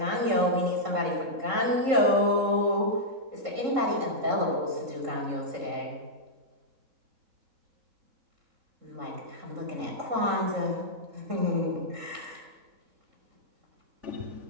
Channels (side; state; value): left; late; 3.7 ms